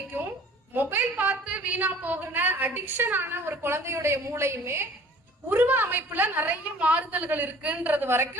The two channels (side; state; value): both; normal; correlation 0.49